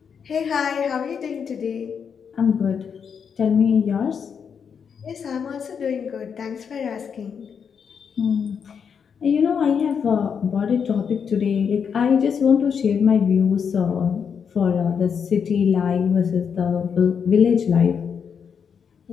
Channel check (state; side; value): quieter; right; 6.8 dB